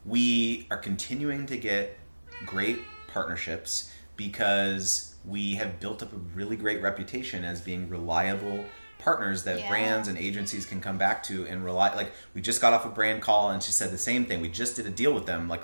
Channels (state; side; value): inverted; both; correlation -1.00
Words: we are continuing to get great partnerships because we have built up a really great reputation as being reliable partners that brands and agencies can come back to and rely. Like, we just got off a brand call and she said the same thing. We just did a deal with them like